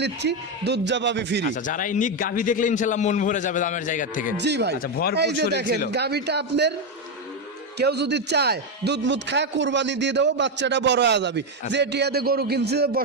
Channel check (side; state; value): both; normal; correlation 0.07